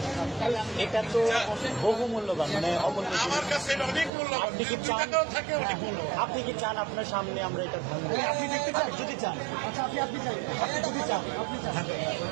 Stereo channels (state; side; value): drops out; left; at 4.1 s